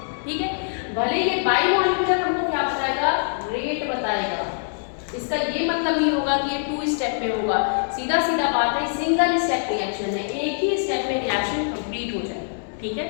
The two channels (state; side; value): silent; right; digital silence